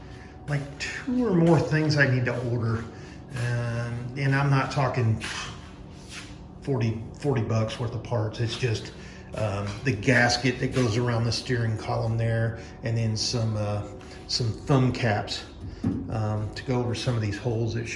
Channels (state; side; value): identical; both; correlation 1.00